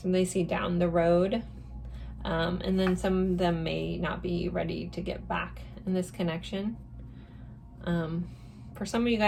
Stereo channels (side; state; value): both; identical; correlation 1.00